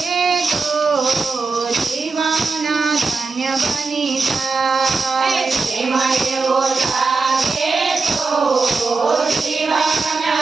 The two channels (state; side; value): quieter; left; 4.2 dB